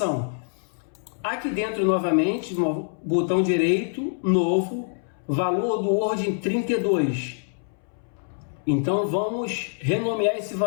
Aqui dentro, novamente, no botão direito, novo, valor do Word 32. Então, vamos renomear esse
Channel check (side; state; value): right; silent; 62 dB below the other